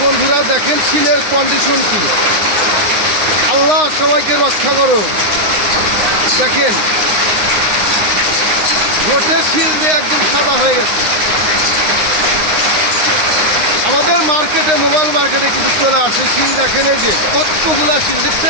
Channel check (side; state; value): left; late; 9.7 ms